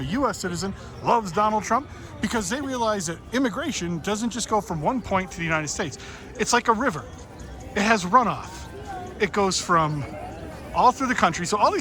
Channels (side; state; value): both; identical; correlation 1.00